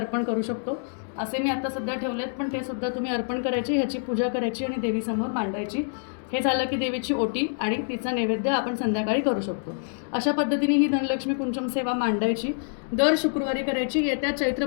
करू शकतो. असे मी आता सध्या ठेवलेत, पण ते सुद्धा तुम्ही अर्पण करायचे, ह्याची पूजा करायची आणि देवीसमोर मांडायची. हे झालं की देवीची ओटी आणि तिचा नैवेद्य आपण संध्याकाळी करू शकतो. अशा पद्धतीने ही धनलक्ष्मी कुंचम सेवा मांडायची, दर शुक्रवारी करायची. येत्या चैत्र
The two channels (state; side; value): silent; right; digital silence